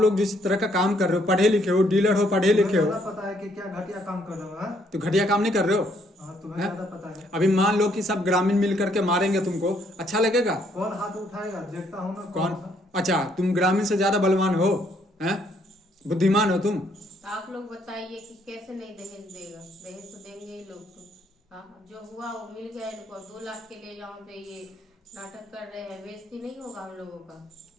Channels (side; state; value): both; normal; correlation 0.69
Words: जिस तरह का काम कर रहे हो, पढ़े लिखे हो, डीलर हो, पढ़े लिखे हो, पता है कि क्या घटिया काम कर रहे हो? तो घटिया काम नहीं कर रहे हो। तुम्हें ज्यादा पता है। अभी मान लो कि सब ग्रामीण मिल करके मारेंगे तुमको, अच्छा लगेगा? कौन हाथ उठाएगा? देखता हूँ ना कौन। अच्छा तुम ग्रामीण से ज्यादा बलवान हो, हैं? बुद्धिमान हो तुम। आप लोग बताइए कि कैसे नहीं दहेज देगा? दहेज तो देंगे ही लोग तो। हाँ, जो हुआ वो मिल गया इनको। 2 लाख के लिए यहाँ पे ये नाटक कर रहे हैं, बेइज्जती नहीं होगा हम लोगों का?